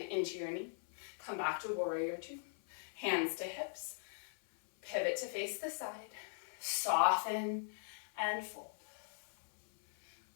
into your knee. Come back to warrior two. Hands to hips. Pivot to face the side. Soften and fold.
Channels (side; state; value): right; silent; 51 dB below the other